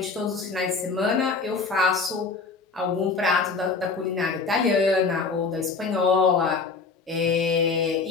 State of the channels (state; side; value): quieter; right; 4.5 dB